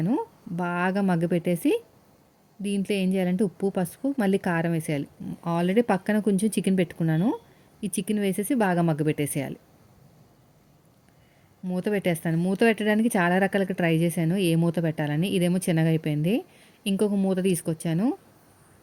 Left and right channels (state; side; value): identical; both; correlation 1.00